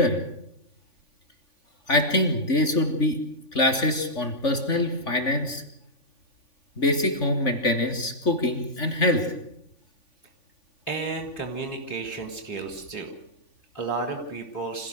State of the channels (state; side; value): late; right; 3.5 ms